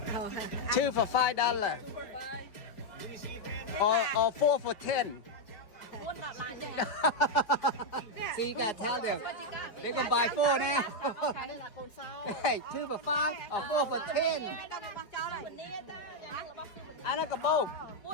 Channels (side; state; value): right; late; 4.8 ms